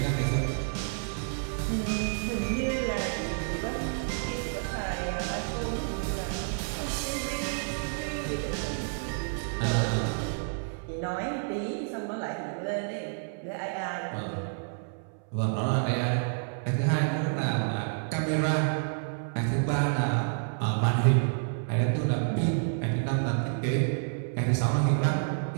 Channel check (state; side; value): silent; left; 58 dB below the other